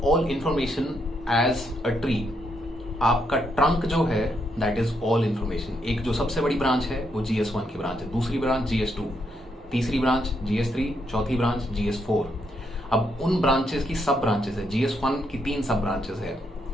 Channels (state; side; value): normal; both; correlation 0.77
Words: all information as a tree. आपका ट्रंक जो है दैट इज ऑल इंफॉर्मेशन. एक जो सबसे बड़ी ब्रांच है वो GS1 की ब्रांच है, दूसरी ब्रांच GS2, तीसरी ब्रांच GS3, चौथी ब्रांच GS4. अब उन ब्रांचेस की सब ब्रांचेस है. GS1 की 3 सब ब्रांचेस है,